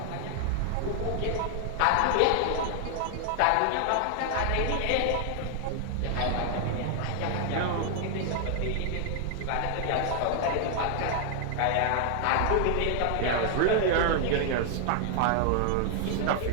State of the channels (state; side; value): different; both; correlation 0.00